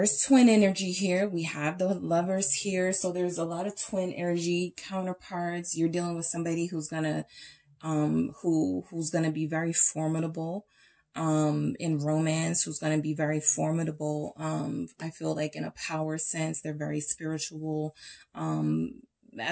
twin energy here. We have the Lovers here. So there's a lot of twin energy counterparts. You're dealing with somebody who's gonna who's going to be very formidable, in romance, who's going to be very formidable. I feel like in a power sense, they're very spiritual,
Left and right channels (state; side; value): identical; both; correlation 1.00